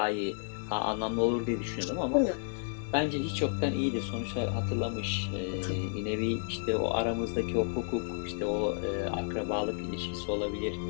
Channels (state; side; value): silent; right; 57 dB below the other